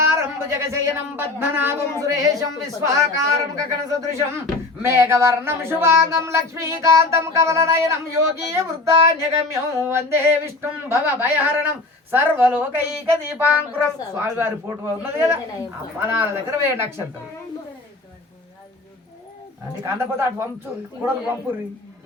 భుజగశయనం పద్మనాభం సురేశం విశ్వాకారం గగన సదృశం మేఘవర్ణం శుభాంగం లక్ష్మీకాంతం కమలనయనం యోగీయ వృద్ధాన్యగమ్యం వందే విష్ణుం భవ భయహరణం సర్వలోకైక దీపాంకురం. స్వామివారి ఫోటో ఉన్నది కదా, ఆ పదాల దగ్గర 2 అక్షంతలు. అది కందపోతే అటు పంపు కూడా పంపుర్రి,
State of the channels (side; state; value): right; quieter; 3.2 dB